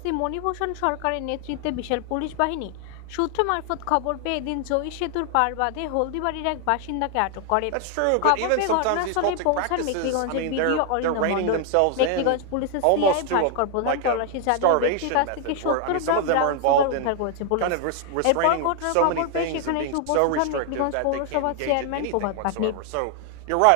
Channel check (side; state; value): both; different; correlation 0.00